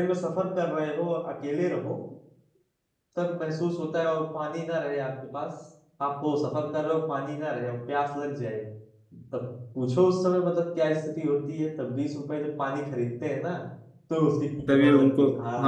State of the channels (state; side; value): identical; both; correlation 1.00